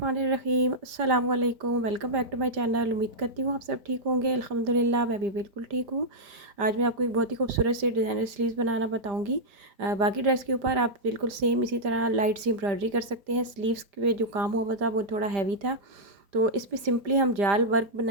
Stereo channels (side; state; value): left; late; 5.0 ms